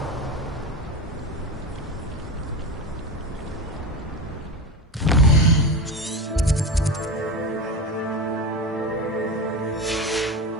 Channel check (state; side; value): normal; both; correlation 0.23